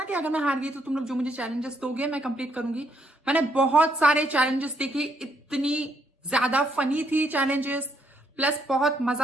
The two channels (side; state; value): both; normal; correlation 0.73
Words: कि अगर मैं हार गई तो तुम लोग जो मुझे चैलेंजेस दोगे मैं कंप्लीट करूंगी। मैंने बहुत सारे चैलेंजेस देखे, इतनी ज्यादा फनी थी चैलेंजेस, प्लस बहुत